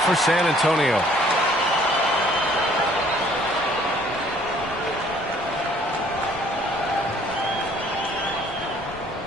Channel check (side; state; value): both; normal; correlation 0.59